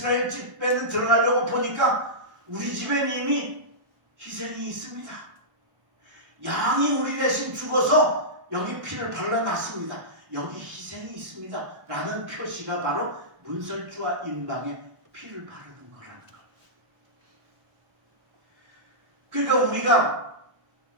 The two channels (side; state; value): left; late; 1.1 ms